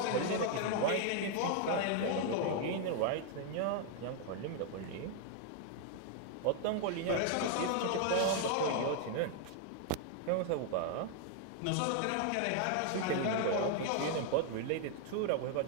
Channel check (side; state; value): both; different; correlation 0.00